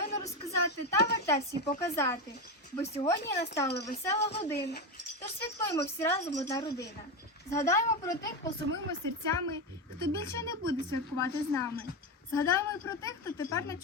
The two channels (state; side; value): normal; both; correlation 0.15